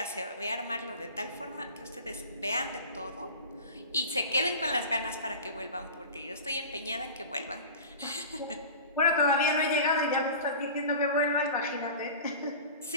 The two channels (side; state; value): both; inverted; correlation -0.36